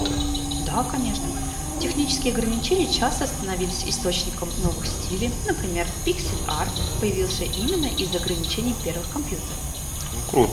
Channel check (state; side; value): identical; both; correlation 1.00